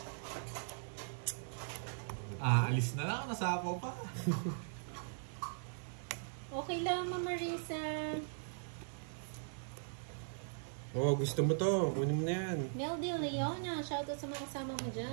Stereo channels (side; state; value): left; silent; digital silence